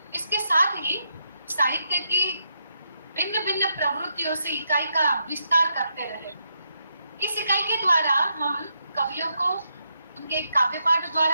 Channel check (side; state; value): both; inverted; correlation -0.81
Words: इसके साथ ही साहित्य की भिन्न भिन्न प्रवृत्तियों से इकाई का विस्तार करते रहे। इस इकाई के द्वारा हम कवियों को उनके काव्य पाठ